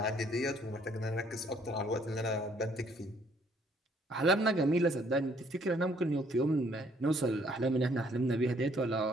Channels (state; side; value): normal; both; correlation 0.64